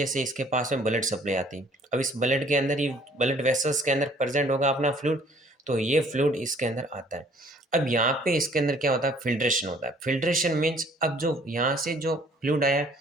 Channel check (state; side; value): normal; both; correlation 0.57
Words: इसके पास में ब्लड सप्लाई आती है, अब इस ब्लड के अंदर, ये ब्लड वेसल्स के अंदर प्रेजेंट होगा अपना फ्लूइड, तो ये फ्लूइड इसके अंदर आता है। अब यहाँ पे इसके अंदर क्या होता है, फिल्ट्रेशन होता है। फिल्ट्रेशन मीन्स अब जो यहाँ से जो फ्लूइड आया है